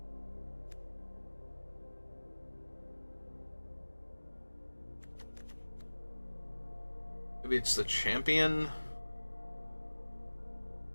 Maybe it's the champion.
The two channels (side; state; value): both; inverted; correlation -1.00